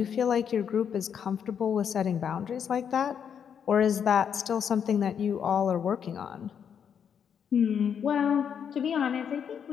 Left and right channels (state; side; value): quieter; right; 7.8 dB